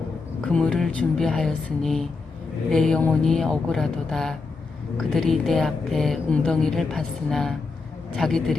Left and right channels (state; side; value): quieter; right; 4.1 dB